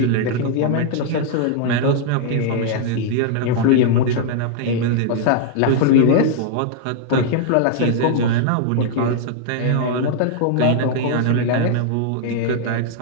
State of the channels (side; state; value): both; different; correlation -0.01